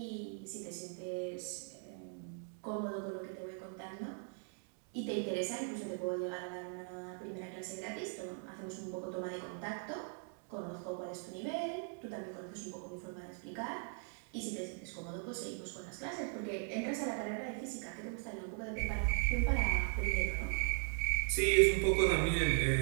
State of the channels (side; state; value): left; silent; 52 dB below the other